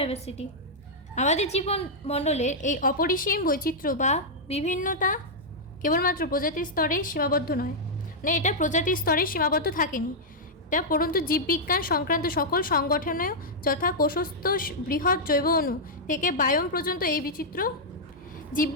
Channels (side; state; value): both; normal; correlation -0.06